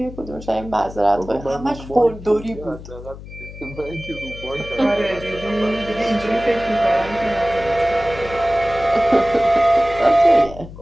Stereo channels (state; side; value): noise; left; hum, 14 dB below the sound